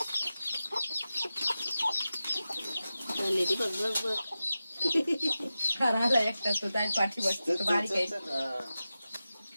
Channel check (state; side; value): inverted; both; correlation -0.93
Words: राहिला एकटाच तो जाईल पाठी बसतो. तो बारीक आहे.